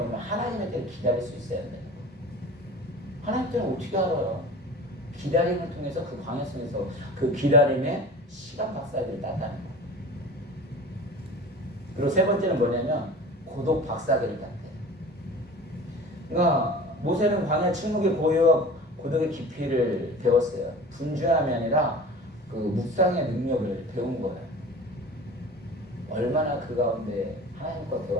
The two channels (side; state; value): both; normal; correlation 0.39